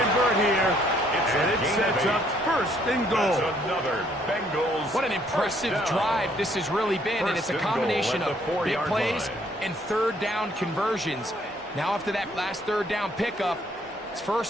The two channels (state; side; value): normal; both; correlation 0.66